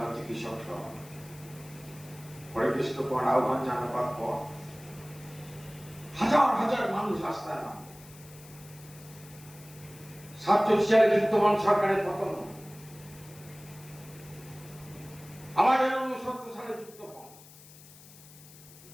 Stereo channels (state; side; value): noise; left; hiss, 20 dB below the sound